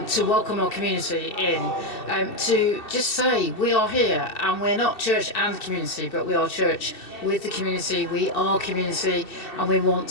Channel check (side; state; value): right; late; 2.7 ms